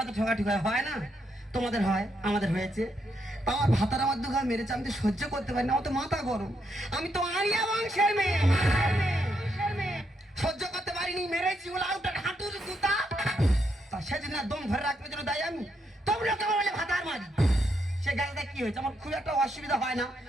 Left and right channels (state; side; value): normal; both; correlation 0.78